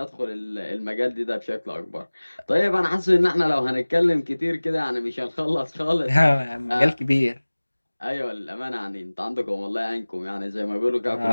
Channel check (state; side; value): inverted; both; correlation -1.00